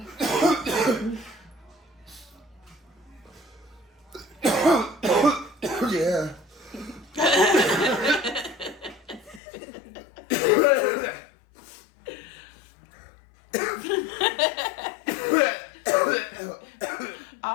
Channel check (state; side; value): drops out; right; at 9.4 s